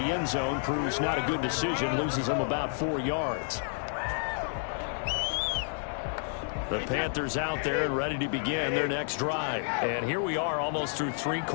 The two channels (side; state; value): right; silent; digital silence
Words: end zone proves not a good decision, loses him about 4 yards. The Panthers out there and ready to begin their next drive. And here we are almost through 3